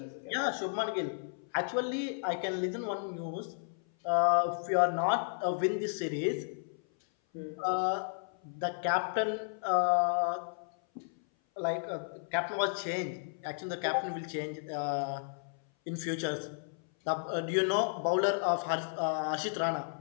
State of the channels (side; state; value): right; silent; 56 dB below the other